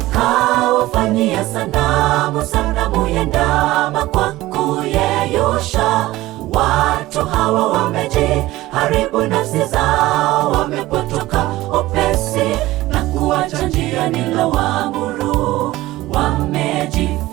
Kawafanyia sanamu ya ndama kwa kuyeyusha. Watu hawa wamejiharibu nafsi zao, wamepotoka upesi na kuacha njia nilowaamuru.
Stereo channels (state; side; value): quieter; left; 17.5 dB